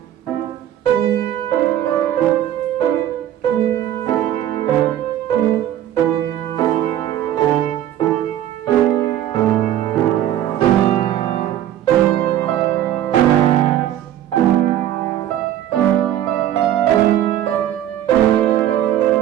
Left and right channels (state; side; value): quieter; left; 11.9 dB